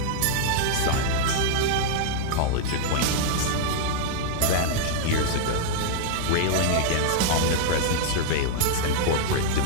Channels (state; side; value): different; both; correlation -0.01